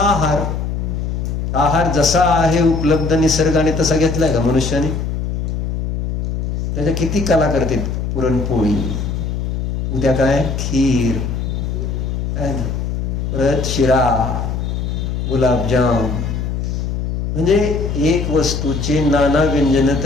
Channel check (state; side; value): noise; left; hum, 2 dB below the sound